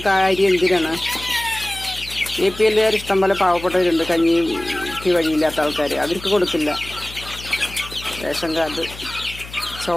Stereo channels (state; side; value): noise; left; hum, 15 dB below the sound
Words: അരി എന്തിനാണ്? APL ഇഷ്ടം പോലെ പാവപ്പെട്ടവരുണ്ട്, കഞ്ഞിക്ക് വഴിയില്ലാത്ത ആൾക്കാർ. അവർക്ക് കൊടുക്കില്ല. റേഷൻ കാർഡ്,